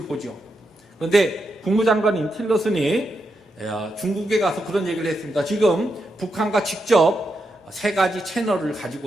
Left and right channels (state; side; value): normal; both; correlation 0.84